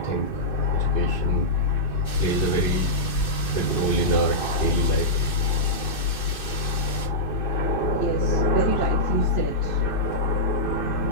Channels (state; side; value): late; right; 2.6 ms